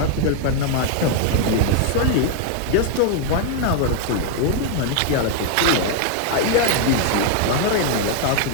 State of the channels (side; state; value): both; different; correlation 0.00